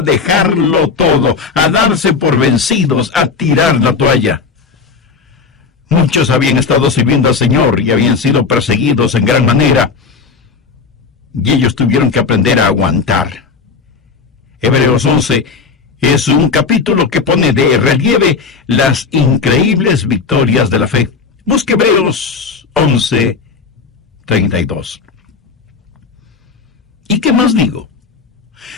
dejarlo todo, a darse por vencidos, a tirar la toalla. Muchos habían estado sirviendo al Señor y habían sido perseguidos en gran manera, y ellos tuvieron que aprender a aguantar. Hebreos 11 es un capítulo que pone de relieve las increíbles victorias de la fe. Busque Hebreos 11:32. ¿Y qué más digo?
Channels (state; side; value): quieter; right; 5.0 dB